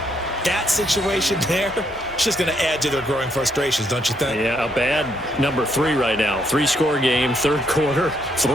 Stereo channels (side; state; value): both; normal; correlation 0.73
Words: That situation there, it's just going to add to their growing frustrations, don't you think? Yeah, a bad number 3 right now. 3-score game, 3rd quarter,